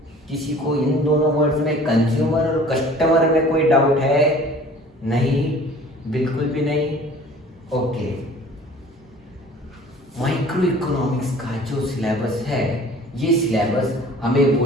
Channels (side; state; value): both; normal; correlation 0.48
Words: किसी को इन दोनों वर्ड्स में कंज्यूमर और कस्टमर में कोई डाउट है? नहीं, बिल्कुल भी नहीं। ओके, माइक्रो इकोनॉमिक्स का जो सिलेबस है, ये सिलेबस हमें